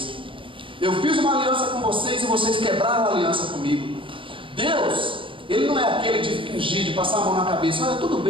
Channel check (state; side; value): late; left; 0.25 ms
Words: Eu fiz uma aliança com vocês e vocês quebraram a aliança comigo. Deus, Ele não é aquele de fingir, de passar a mão na cabeça. Olha, tudo